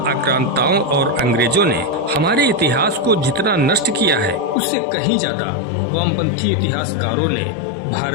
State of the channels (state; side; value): drops out; right; at 4.5 s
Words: आक्रांताओं और अंग्रेजों ने हमारे इतिहास को जितना नष्ट किया है, उससे कहीं ज्यादा वामपंथी इतिहासकारों ने